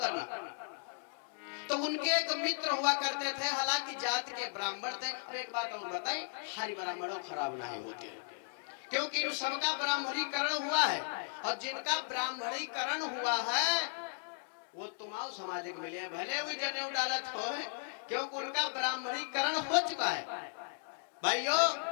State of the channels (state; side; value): silent; right; digital silence